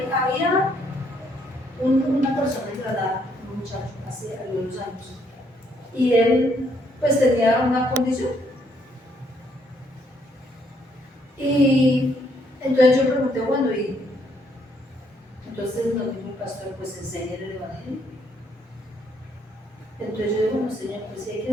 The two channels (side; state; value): both; normal; correlation 0.70